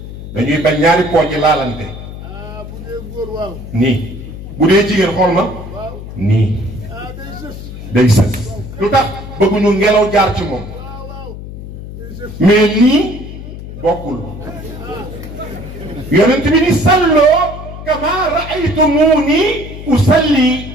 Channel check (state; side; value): noise; left; hum, 11 dB below the sound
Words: dañuy bañ ñaari pooj laalante bu dee góor waaw nii bu dee jigéen xool ma nii day sës lu tax bëgguñu ngelaw jaar ci moom mais nii bokkul yonent bi ni salloo kama raaytumuni usalli